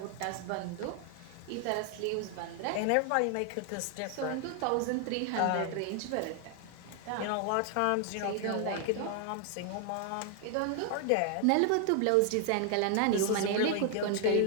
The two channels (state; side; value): different; both; correlation 0.00